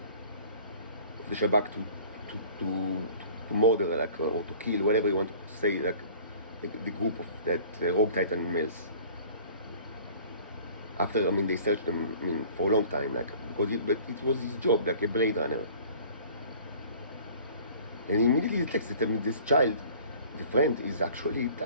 the Shabak to murder or to kill, whatever you want to say, like the group of that rogue Titan males. After they searched them for a long time, because it was his job, like a Blade Runner. And he immediately detects that this child, the friend, is actually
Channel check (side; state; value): both; inverted; correlation -0.48